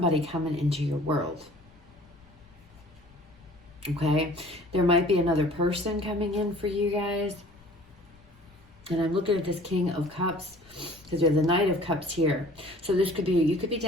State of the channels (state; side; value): noise; left; rumble, 28 dB below the sound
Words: coming into your world. Okay, there might be another person coming in for you guys. And I'm looking at this King of Cups because we have the Knight of Cups here. So this could be, you could be